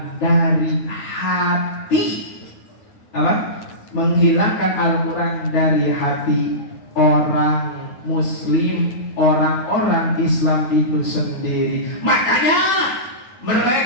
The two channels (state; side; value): late; right; 9.8 ms